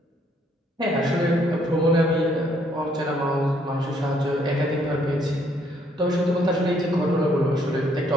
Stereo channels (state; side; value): normal; both; correlation 0.68